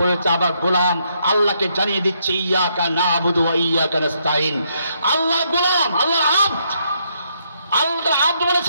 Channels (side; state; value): both; inverted; correlation -0.74